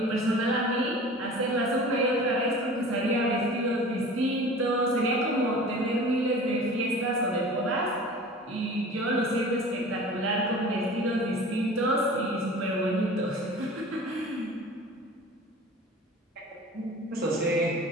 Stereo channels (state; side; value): normal; both; correlation 0.40